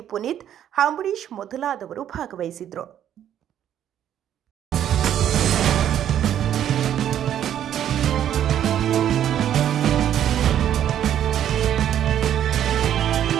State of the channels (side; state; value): left; quieter; 10.5 dB